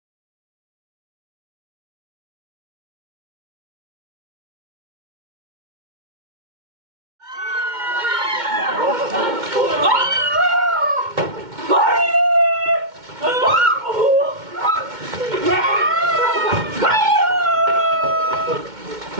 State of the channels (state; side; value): late; left; 2.2 ms